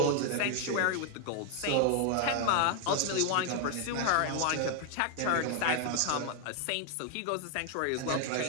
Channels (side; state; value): both; different; correlation 0.00